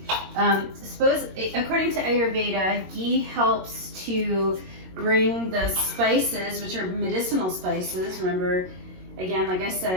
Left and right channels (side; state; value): left; late; 22 ms